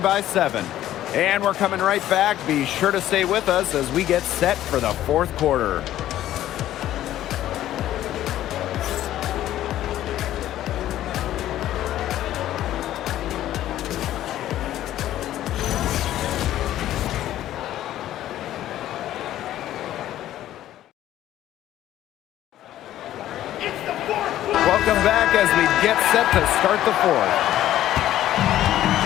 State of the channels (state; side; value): quieter; right; 13.0 dB